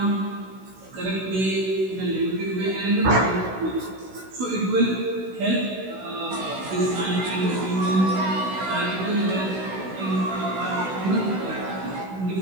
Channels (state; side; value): late; left; 16 ms